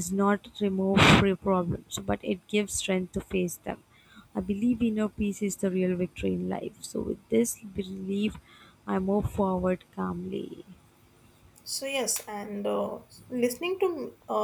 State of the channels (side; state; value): both; identical; correlation 1.00